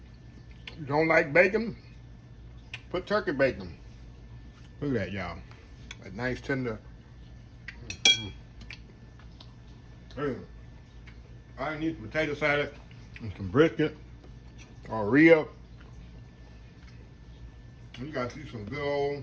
You don't like bacon? Put turkey bacon. Look at that, y'all. A nice tender. I need some potato salad and some brisket or rib. You gotta see some good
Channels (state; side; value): identical; both; correlation 1.00